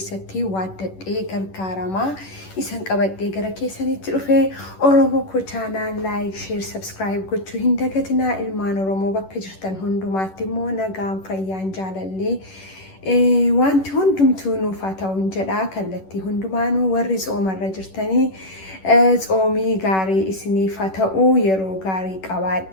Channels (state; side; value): late; right; 11 ms